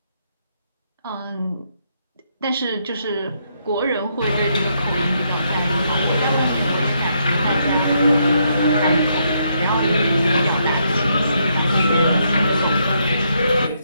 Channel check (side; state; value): both; inverted; correlation -0.76